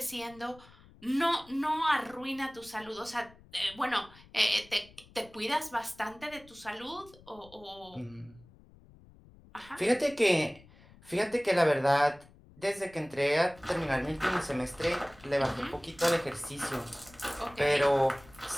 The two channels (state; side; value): noise; left; rumble, 24 dB below the sound